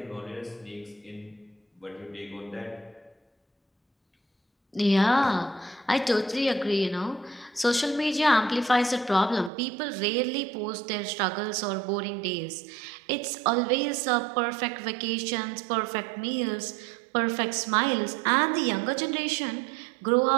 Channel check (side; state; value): left; drops out; at 9.5 s